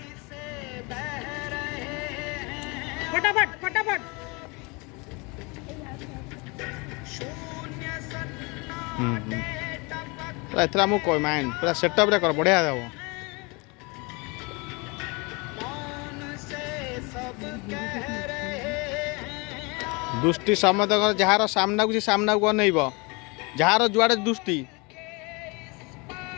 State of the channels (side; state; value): right; quieter; 28.4 dB